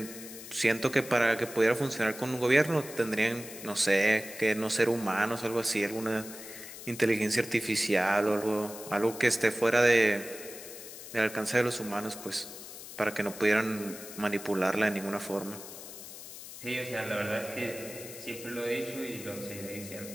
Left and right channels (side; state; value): left; noise; hiss, 13 dB below the sound